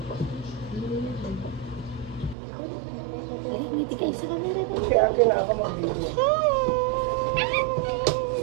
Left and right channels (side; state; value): left; drops out; at 2.4 s